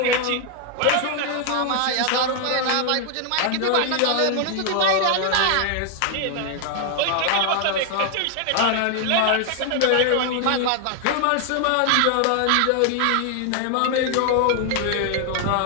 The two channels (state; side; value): different; both; correlation 0.00